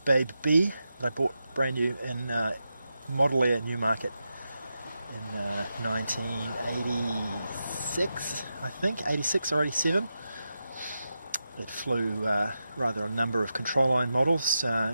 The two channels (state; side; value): inverted; both; correlation -0.89